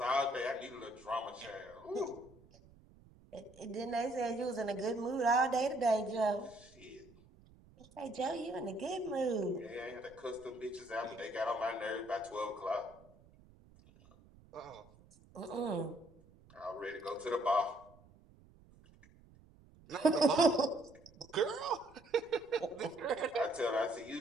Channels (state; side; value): noise; right; rumble, 25 dB below the sound